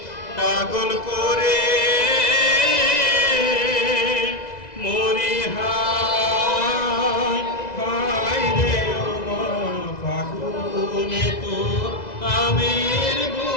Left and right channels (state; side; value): late; right; 2.0 ms